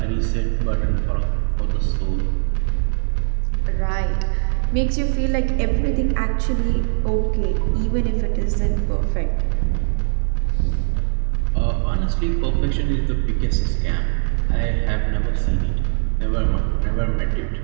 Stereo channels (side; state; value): left; silent; digital silence